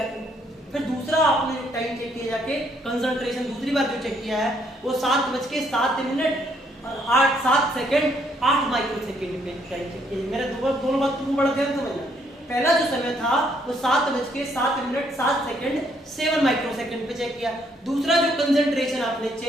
फिर दूसरा आपने टाइम चेक किया जाके, कंसंट्रेशन दूसरी बार जो चेक किया है वो 7:07 और 7 माइक्रो सेकंड पे टाइम चेक किया। मेरे दोनों बात तुम बड़ा ध्यान समझना। पहला जो समय था वो 7:07 7 माइक्रो सेकंड पे चेक किया। दूसरा जो कंसंट्रेशन आपने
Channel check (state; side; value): normal; both; correlation 0.69